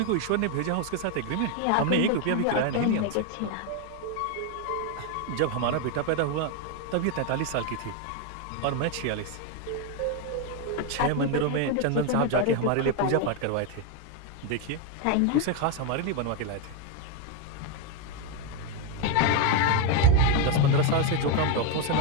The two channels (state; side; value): different; both; correlation 0.01